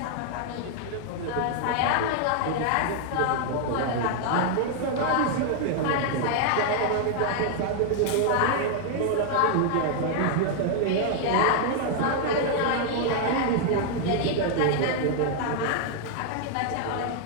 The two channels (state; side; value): different; both; correlation 0.00